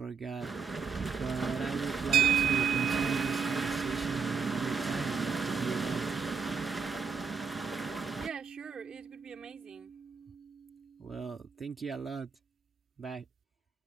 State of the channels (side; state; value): left; quieter; 5.8 dB